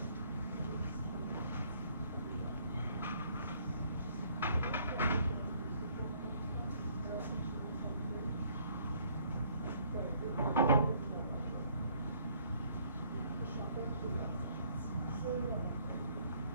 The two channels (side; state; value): both; inverted; correlation -0.63